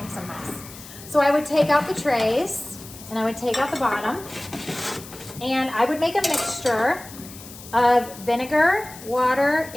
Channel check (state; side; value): noise; left; hiss, 16 dB below the sound